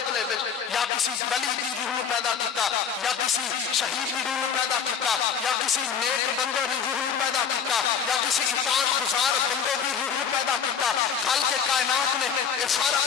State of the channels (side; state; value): right; quieter; 7.2 dB